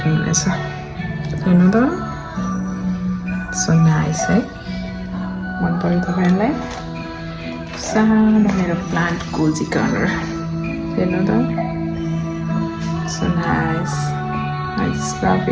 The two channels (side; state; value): both; identical; correlation 1.00